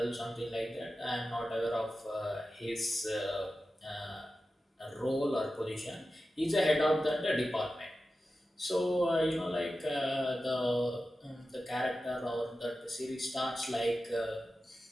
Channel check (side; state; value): both; normal; correlation 0.93